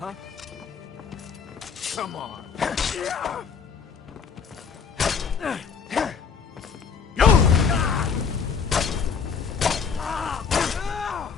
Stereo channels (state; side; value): quieter; right; 6.1 dB